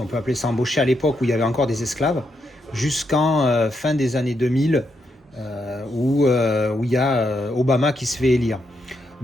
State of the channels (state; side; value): normal; both; correlation 0.81